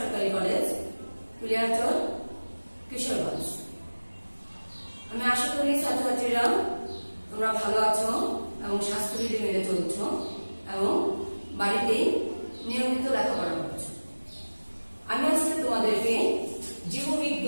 কলেজ, কুলিয়ারচর, কিশোরগঞ্জ। আমি আশা করি ছাত্রছাত্রীরা তোমরা ভালো আছো এবং স্বাস্থ্যবিধি মেনে চলছ এবং বাড়িতে নিয়মিত লেখাপড়া করছো। আমি আজকে তোমাদেরকে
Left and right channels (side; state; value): both; inverted; correlation -1.00